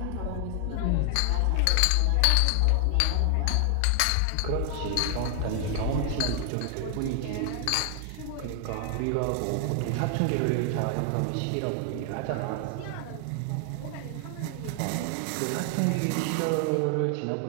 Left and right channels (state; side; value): different; both; correlation 0.00